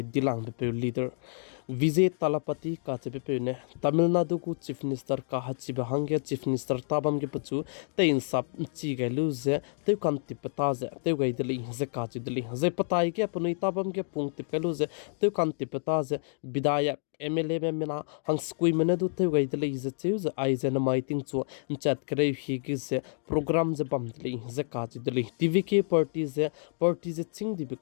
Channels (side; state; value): right; silent; digital silence